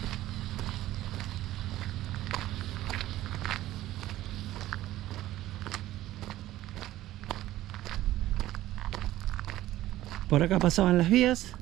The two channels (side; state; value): left; quieter; 14.9 dB